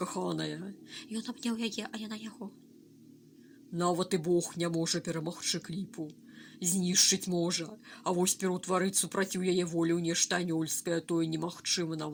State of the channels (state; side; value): identical; both; correlation 1.00